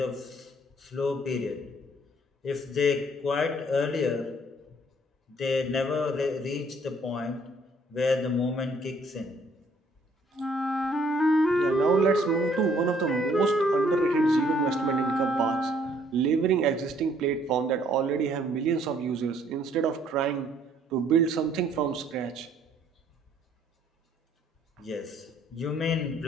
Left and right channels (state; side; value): normal; both; correlation 0.63